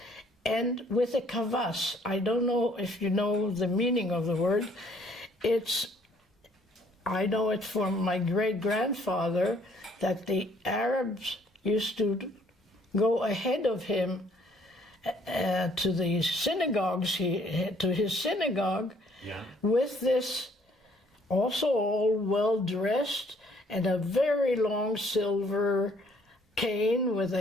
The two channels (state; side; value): normal; both; correlation 0.63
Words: and with a kavas. I don't know if you know the meaning of the word. I know it from my great-grandfather that the Arabs used to go ahead of him to the synagogues, to his synagogue, with this, also all well-dressed, and a very long silver cane with